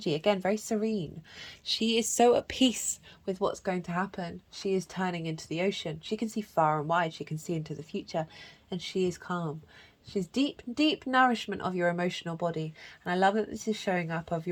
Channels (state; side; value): identical; both; correlation 1.00